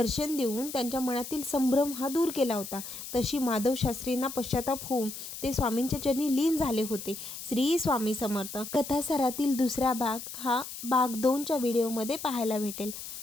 देऊन त्यांच्या मनातील संभ्रम हा दूर केला होता. तशी माधव शास्त्रींना पश्चाताप होऊन ते स्वामींच्या चरणी लीन झाले होते. श्री स्वामी समर्थ. कथासारातील दुसरा भाग हा भाग 2च्या व्हिडिओमध्ये पाहायला भेटेल.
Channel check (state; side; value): noise; left; hiss, 10 dB below the sound